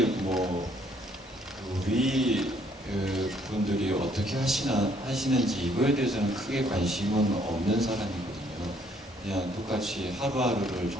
뭐 우리 분들이 어떻게 하시는지 이거에 대해서는 크게 관심은 없는 사람이거든요. 그냥 똑같이 하루하루를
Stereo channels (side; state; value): both; normal; correlation 0.65